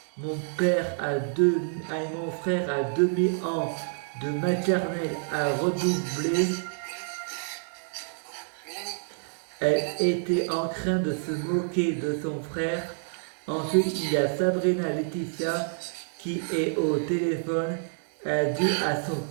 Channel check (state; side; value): silent; left; digital silence